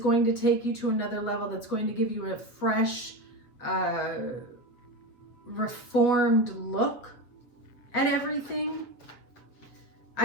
to take you to another level, that's going to give you a fresh, reformed look at everything.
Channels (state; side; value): late; right; 8.3 ms